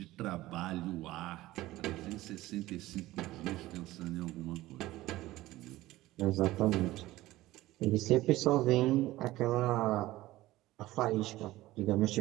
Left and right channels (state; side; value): quieter; left; 17.1 dB